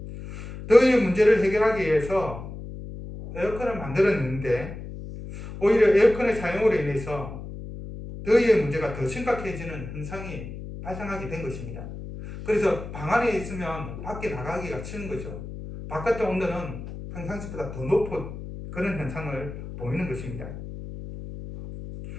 더위의 문제를 해결하기 위해서 에어컨을 만들었는데 오히려 에어컨의 사용으로 인해서 더위의 문제가 더 심각해지는 현상이 발생하게 된 것입니다. 그래서 방 안에 있으면 밖에 나가기가 싫은 거죠. 바깥의 온도는 평상시보다 더 높은 그런 현상을 보이는 것입니다.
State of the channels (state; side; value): noise; left; hum, 10 dB below the sound